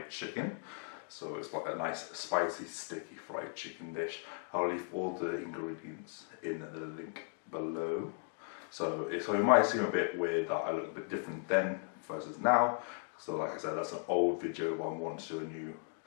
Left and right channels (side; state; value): right; silent; 53 dB below the other